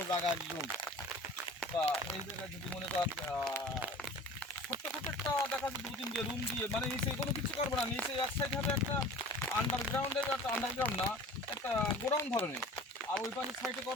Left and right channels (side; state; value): both; normal; correlation 0.42